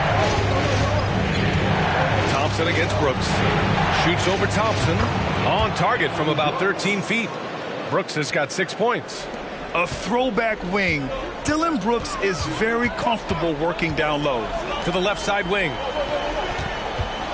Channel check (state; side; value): identical; both; correlation 1.00